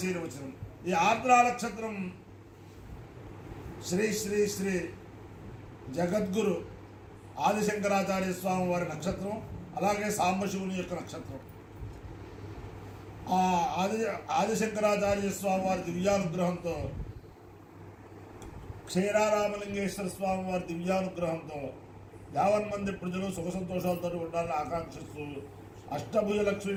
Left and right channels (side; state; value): both; identical; correlation 1.00